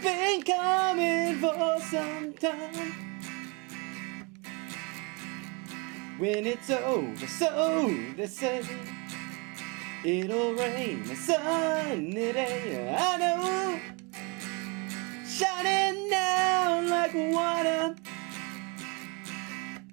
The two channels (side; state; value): left; quieter; 29.7 dB